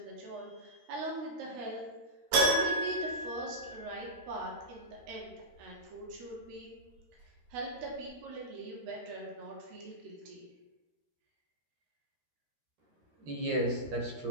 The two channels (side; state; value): left; late; 13 ms